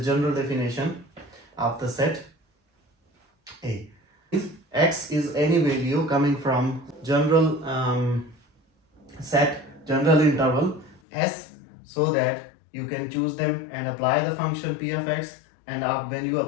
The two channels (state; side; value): drops out; right; at 11.0 s